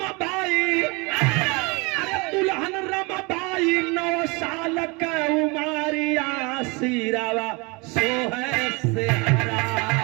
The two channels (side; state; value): left; quieter; 28.0 dB